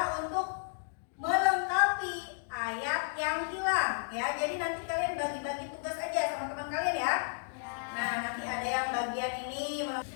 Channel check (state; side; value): silent; right; digital silence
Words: untuk melengkapi ayat yang hilang ya. Jadi nanti kalian bagi-bagi tugas aja sama teman kalian ya. Nah, nanti ada yang bagian ini